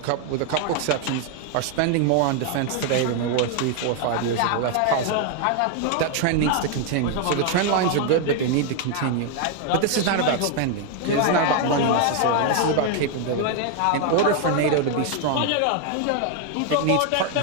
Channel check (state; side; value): different; both; correlation 0.00